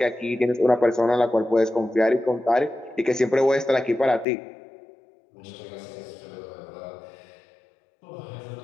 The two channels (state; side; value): drops out; right; at 4.2 s